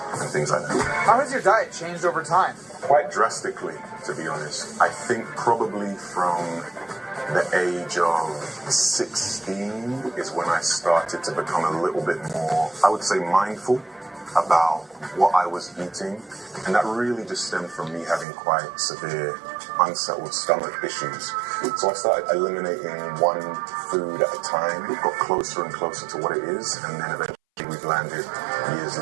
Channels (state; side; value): drops out; left; at 18.2 s